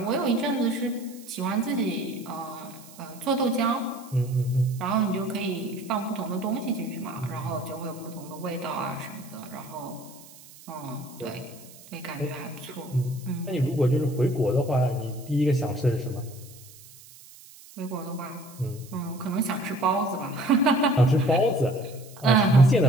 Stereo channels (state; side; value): noise; right; hiss, 21 dB below the sound